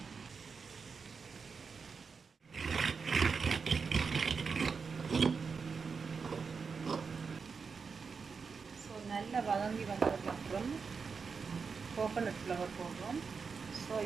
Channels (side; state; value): left; quieter; 5.3 dB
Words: ஸோ நல்லா வதங்கி வந்ததுக்கப்புறம் கோகோனட் ஃப்ளவர் போடுறோம். ஸோ